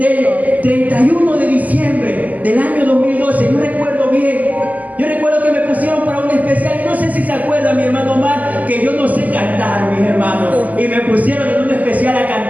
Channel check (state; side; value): late; left; 0.078 ms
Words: 31 de diciembre del año 2012. Yo recuerdo bien. Yo recuerdo que me pusieron para un especial. No sé si se acuerda mi hermano Omar, que yo no sé cantar, mis hermanos. Y me pusieron en un especial a